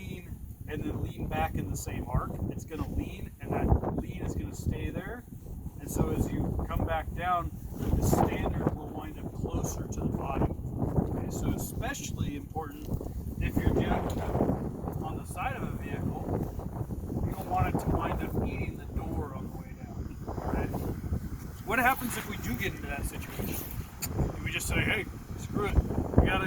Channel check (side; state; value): both; identical; correlation 1.00